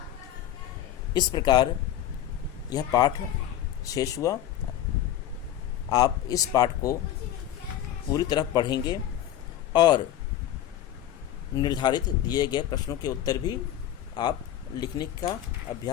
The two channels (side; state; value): right; quieter; 11.7 dB